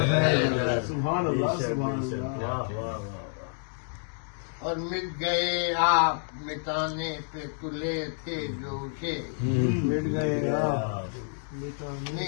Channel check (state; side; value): silent; right; digital silence